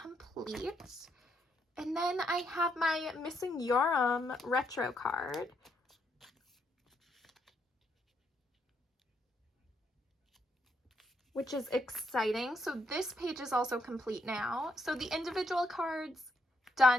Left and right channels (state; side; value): normal; both; correlation 0.76